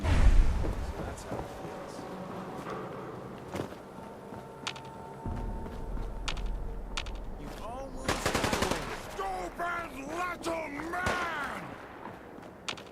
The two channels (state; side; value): identical; both; correlation 1.00